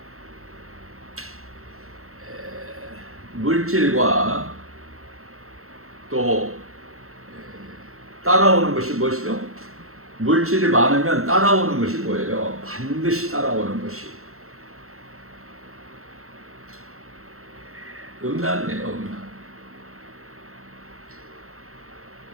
물질과 또 따라오는 것이 무엇이죠? 물질이 많으면 따라오는 것이 뭐예요? 반드시 따라오는 것이 음란이에요, 음란.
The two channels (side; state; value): left; late; 0.63 ms